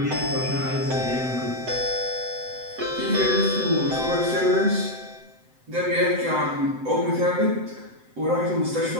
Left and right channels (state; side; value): late; left; 7.8 ms